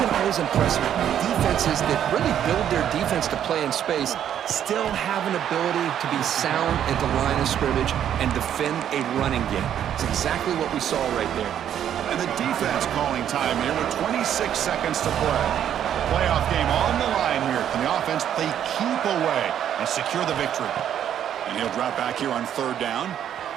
been always impressed with defenses that really build their defense to play in space, still have an ability to be sound at the line of scrimmage and defend a running game. It's exactly what we saw right there. And the defense calling time here with 26 seconds to play. Playoff game on the line here. And the offense, they keep away and secure the victory. And he'll drop back here on third down.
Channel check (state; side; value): quieter; left; 9.9 dB